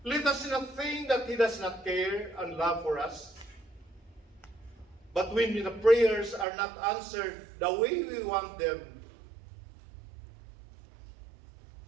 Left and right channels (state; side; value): drops out; left; at 6.5 s